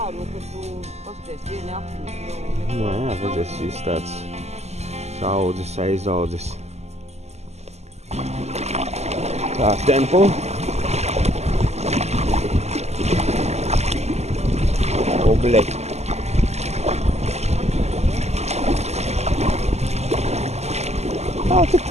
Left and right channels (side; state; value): left; late; 0.32 ms